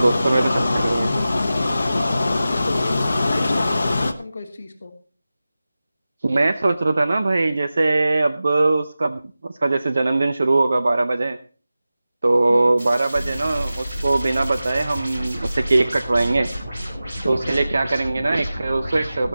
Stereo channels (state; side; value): inverted; both; correlation -0.95